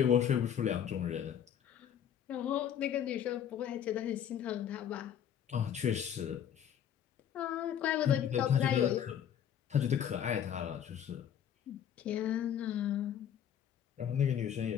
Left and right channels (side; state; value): right; quieter; 9.2 dB